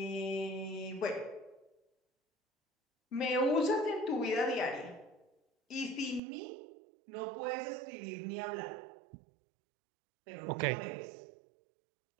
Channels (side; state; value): left; drops out; at 6.2 s